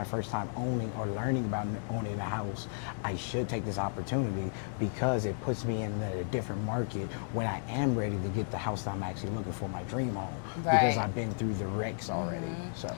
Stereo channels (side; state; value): right; silent; digital silence